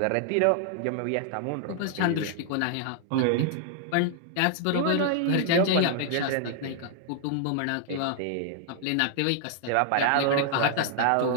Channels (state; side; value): different; both; correlation -0.01